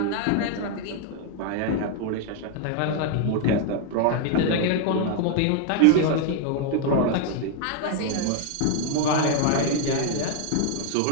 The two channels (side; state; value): both; different; correlation 0.00